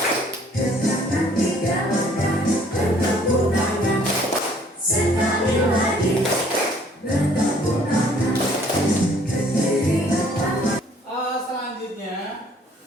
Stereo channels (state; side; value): normal; both; correlation 0.59